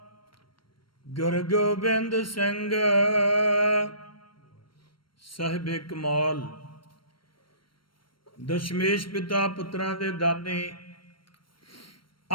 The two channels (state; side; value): late; right; 0.73 ms